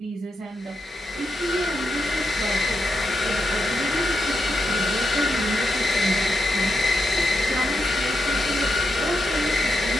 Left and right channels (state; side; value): normal; both; correlation 0.84